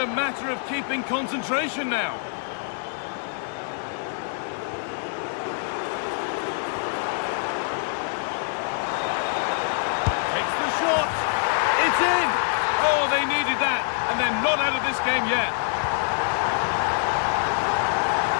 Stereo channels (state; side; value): silent; right; digital silence